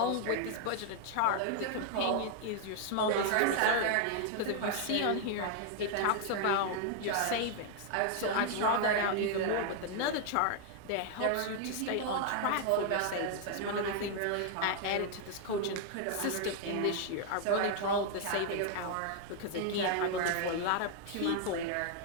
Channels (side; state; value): both; different; correlation 0.00